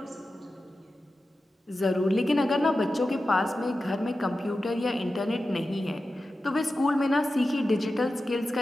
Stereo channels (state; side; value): normal; both; correlation 0.93